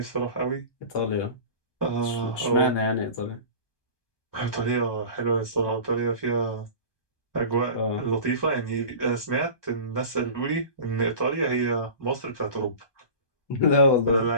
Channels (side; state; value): right; late; 1.2 ms